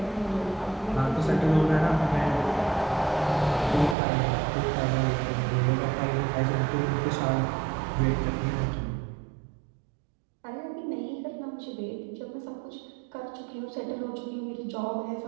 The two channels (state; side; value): drops out; left; at 4.0 s